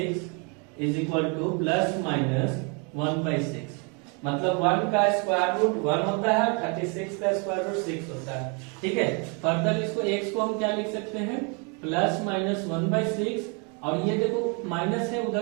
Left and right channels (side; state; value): left; quieter; 34.4 dB